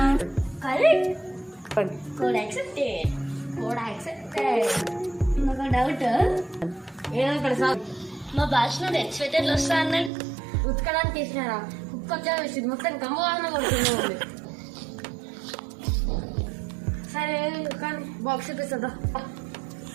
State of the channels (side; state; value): left; drops out; at 10.1 s